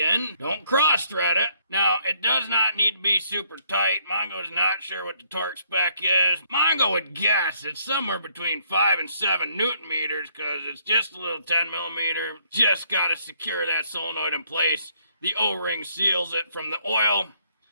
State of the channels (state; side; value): inverted; both; correlation -0.68